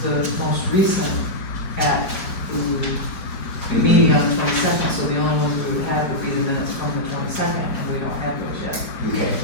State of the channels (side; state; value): right; late; 4.7 ms